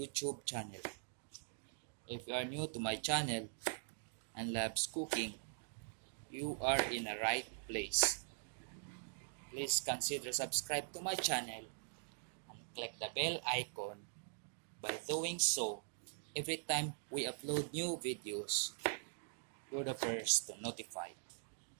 channel. If you are new to my channel and loves cooking, you are in the right place. Please consider subscribe to my channel and click the bell icon. By doing so, every time we upload new videos, you're the first to notify.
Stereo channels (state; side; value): silent; left; digital silence